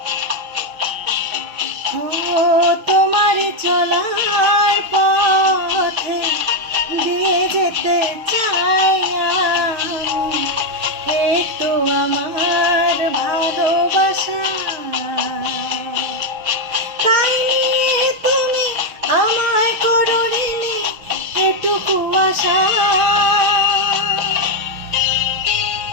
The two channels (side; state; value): left; late; 6.3 ms